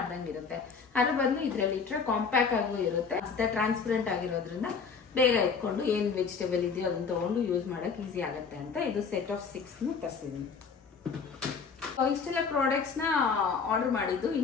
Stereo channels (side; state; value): right; quieter; 5.6 dB